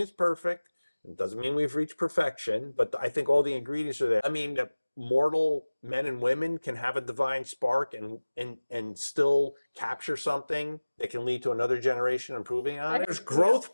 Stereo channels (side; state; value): both; inverted; correlation -1.00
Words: it's perfect. It doesn't mean we've reached perfection, but I think all the ingredients are there. I mean, that mortal men and women can have a divine spark and still capture something that can lead to another generation improving on it. There's